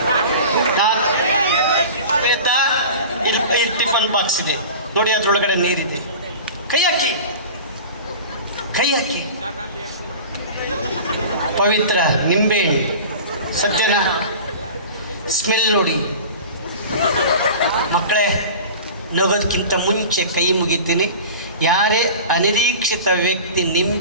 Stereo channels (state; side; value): inverted; both; correlation -0.36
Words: ಇಲ್ಲಿ ಟಿಫನ್ ಬಾಕ್ಸ್ ಇದೆ ನೋಡಿ, ಅದ್ರೊಳಗಡೆ ನೀರಿದೆ. ಕೈ ಹಾಕಿ, ಕೈ ಹಾಕಿ. ಪವಿತ್ರ ನಿಂಬೆಹಣ್ಣು ಸತ್ಯನ ಸ್ಮೆಲ್ ನೋಡಿ. ಮಕ್ಕಳೇ, ನಗೋದಕ್ಕಿಂತ ಮುಂಚೆ ಕೈ ಮುಗಿತೀನಿ. ಯಾರೇ ಅನಿರೀಕ್ಷಿತ ವ್ಯಕ್ತಿ